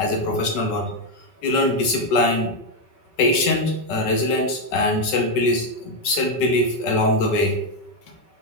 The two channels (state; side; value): late; right; 5.3 ms